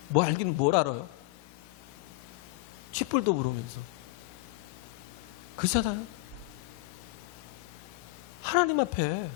뭐 알긴 뭘 알아요? 쥐뿔도 모르면서. 그잖아요. 하나님 앞에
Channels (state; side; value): quieter; right; 23.1 dB